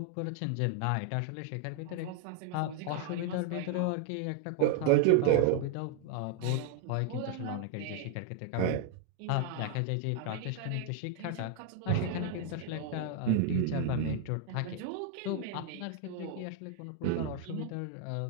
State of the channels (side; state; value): both; different; correlation 0.00